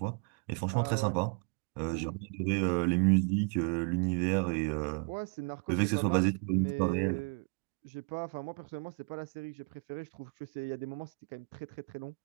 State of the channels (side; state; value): left; quieter; 36.7 dB